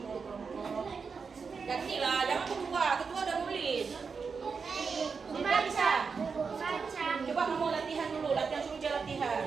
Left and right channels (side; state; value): left; quieter; 5.3 dB